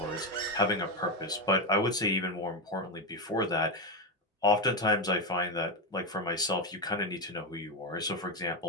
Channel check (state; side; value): normal; both; correlation 0.10